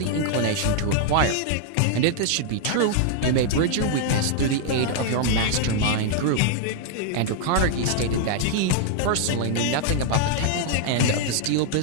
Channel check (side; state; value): both; different; correlation -0.01